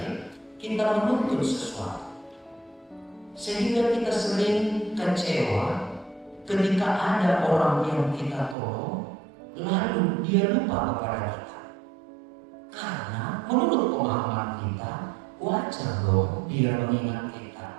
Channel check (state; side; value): drops out; left; at 8.6 s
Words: kita menuntut sesuatu, sehingga kita sering kecewa ketika ada orang yang kita tolong lalu dia lupa kepada kita. Karena menurut pemahaman kita, wajar dong dia mengingat kita,